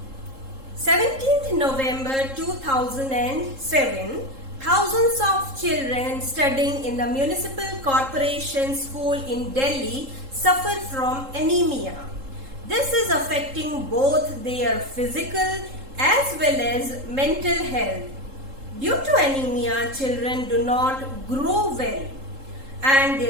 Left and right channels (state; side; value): late; left; 3.7 ms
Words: 17th November 2007, Thousands of children studying in the municipal corporation school in Delhi suffer from anemia. This is affecting both their physical as well as mental health. Due to anemia, children do not grow well and